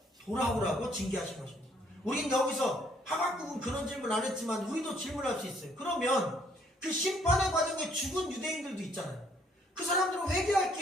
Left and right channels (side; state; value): both; normal; correlation 0.66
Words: 돌아오라고 징계하신 것입니다. 우린 여기서 하박국은 그런 질문 안 했지만 우리도 질문할 수 있어요. 그러면 그 심판의 과정에 죽은 유대인들도 있잖아요. 그 사람들은 회개할